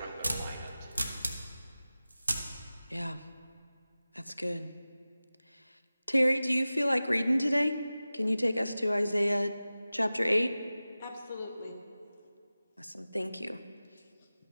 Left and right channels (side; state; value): both; inverted; correlation -0.96